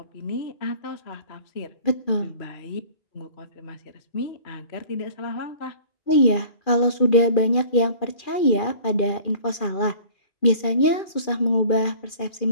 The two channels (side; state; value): right; late; 2.4 ms